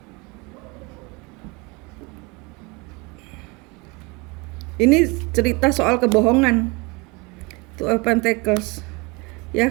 Ini cerita soal kebohongan. Two of Pentacles. Ya,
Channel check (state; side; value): quieter; left; 27.1 dB